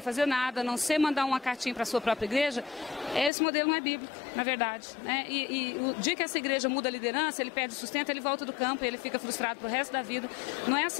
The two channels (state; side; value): drops out; right; at 3.3 s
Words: fazer nada, a não ser mandar uma cartinha para a sua própria igreja, esse modelo não é bíblico, na verdade, né? E o dia que essa igreja muda a liderança, ele perde o sustento, ele volta do campo e ele fica frustrado pro resto da vida. Não é